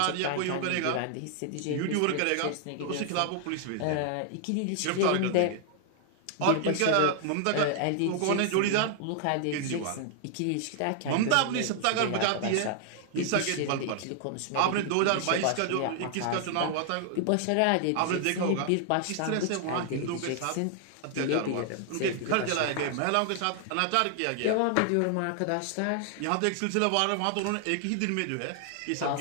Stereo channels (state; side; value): different; both; correlation 0.00